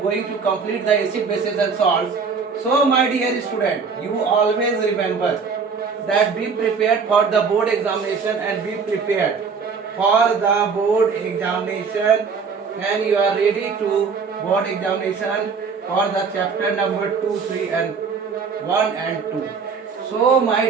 going to complete the acid, bases and salts. So my dear student, you always remember that be prepared for the board examination and be prepared for the board examination, and you are ready to board examination for the chapter number 2, 3 and 1 and 2. So my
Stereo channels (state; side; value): quieter; left; 5.4 dB